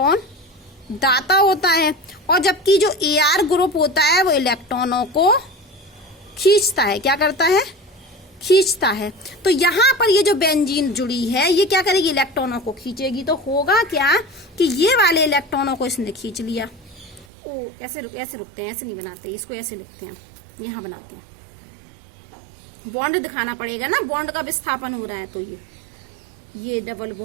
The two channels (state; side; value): drops out; left; at 17.2 s